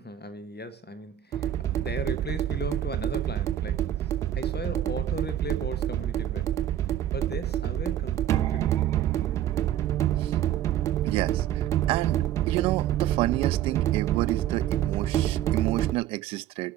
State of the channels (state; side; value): quieter; left; 11.5 dB